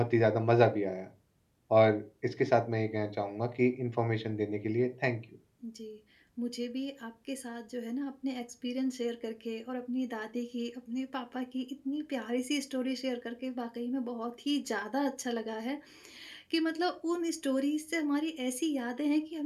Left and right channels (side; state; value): both; identical; correlation 1.00